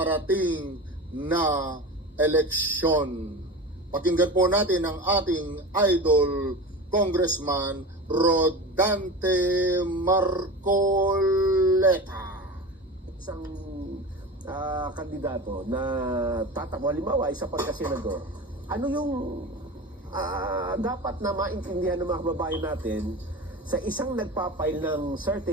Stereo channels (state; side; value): normal; both; correlation 0.29